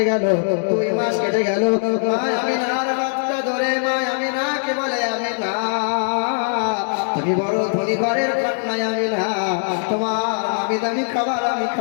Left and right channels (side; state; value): right; silent; digital silence